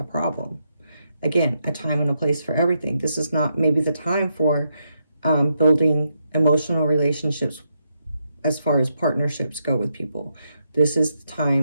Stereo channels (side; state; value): both; inverted; correlation -0.82